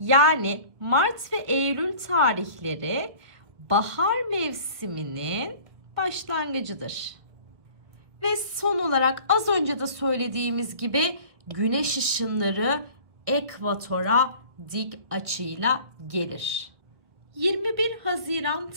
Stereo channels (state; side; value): late; left; 1.7 ms